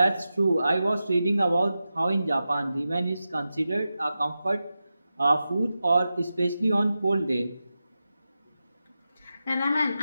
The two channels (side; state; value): both; inverted; correlation -0.92